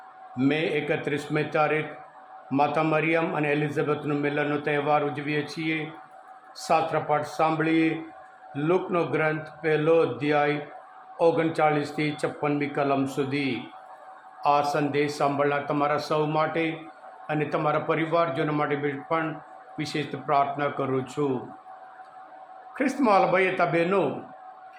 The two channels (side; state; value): both; identical; correlation 1.00